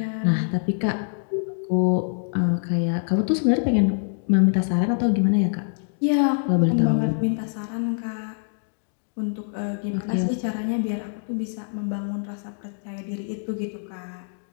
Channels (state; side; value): silent; right; digital silence